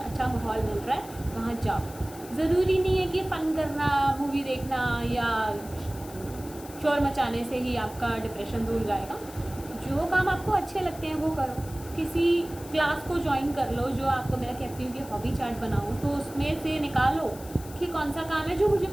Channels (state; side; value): noise; left; hiss, 17 dB below the sound